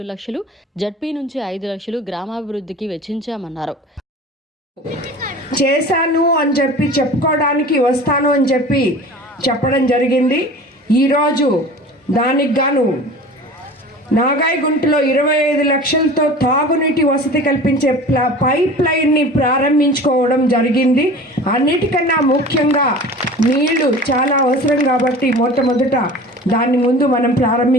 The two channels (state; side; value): normal; both; correlation 0.39